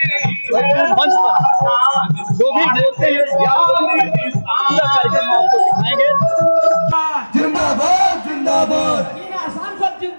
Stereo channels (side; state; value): both; inverted; correlation -1.00